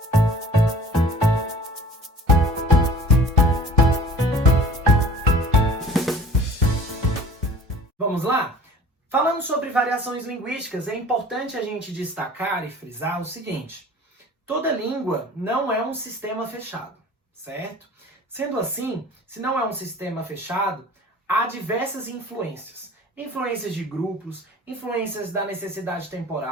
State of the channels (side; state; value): both; normal; correlation 0.45